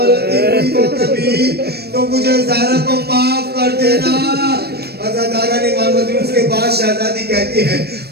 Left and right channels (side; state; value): left; late; 0.47 ms